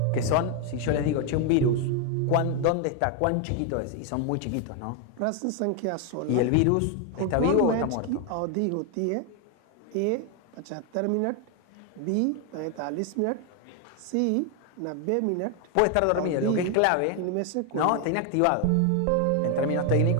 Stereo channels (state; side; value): different; both; correlation 0.01